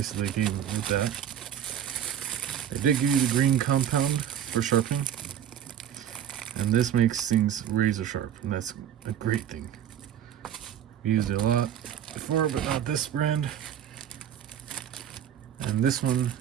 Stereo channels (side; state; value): left; quieter; 9.7 dB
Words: that they gave me with that. They did give you the green compound for sharpening, and this makes things razor sharp, and that's a great thing. We used it a lot before, but not this brand. And this one